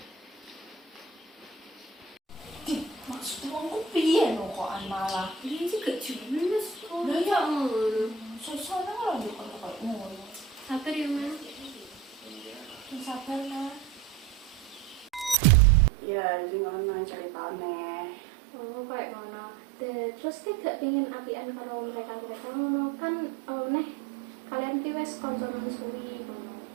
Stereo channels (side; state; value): left; drops out; at 15.4 s